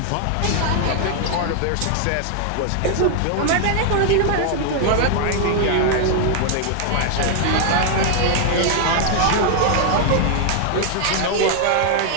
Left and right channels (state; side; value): different; both; correlation 0.00